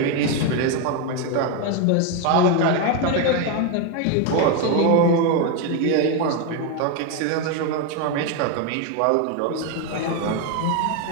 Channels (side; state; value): both; different; correlation 0.02